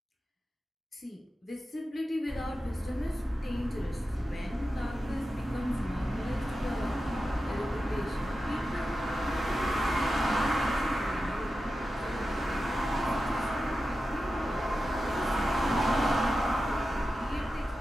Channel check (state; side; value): normal; both; correlation 0.92